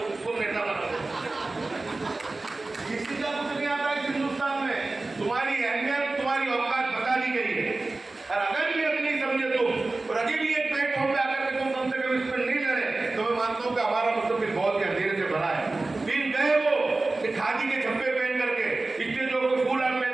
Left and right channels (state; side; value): quieter; left; 3.2 dB